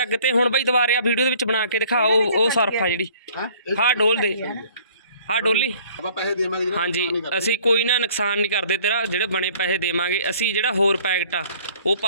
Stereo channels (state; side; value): inverted; both; correlation -0.54